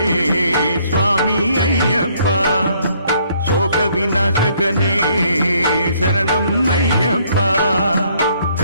స్వామి అయ్యప్ప శోక వినాశకనే శరణం అయ్యప్ప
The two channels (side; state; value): both; inverted; correlation -0.66